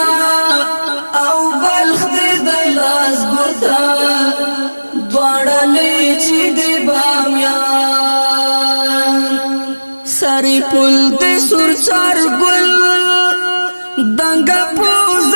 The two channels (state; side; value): inverted; both; correlation -1.00